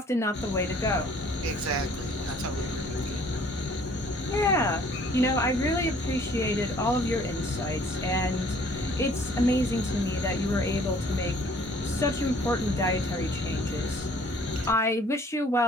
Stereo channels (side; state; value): both; normal; correlation 0.56